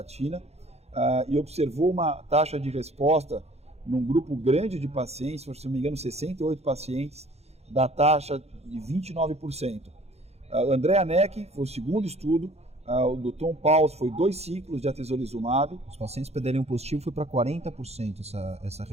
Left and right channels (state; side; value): late; left; 0.31 ms